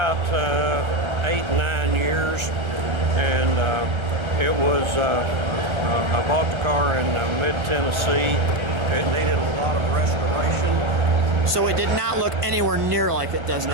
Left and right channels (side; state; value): left; late; 1.3 ms